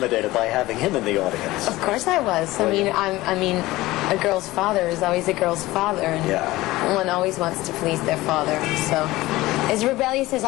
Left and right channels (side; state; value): right; quieter; 18.4 dB